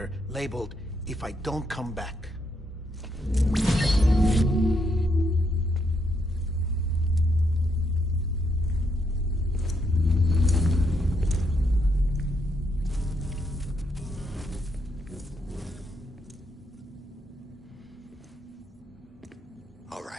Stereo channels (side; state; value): both; normal; correlation 0.76